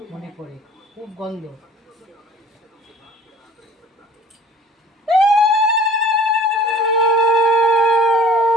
মনে পড়ে খুব গন্ধ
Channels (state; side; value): normal; both; correlation 0.49